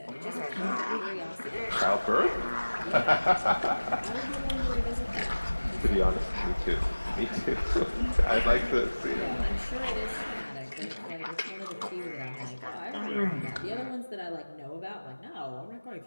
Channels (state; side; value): inverted; both; correlation -1.00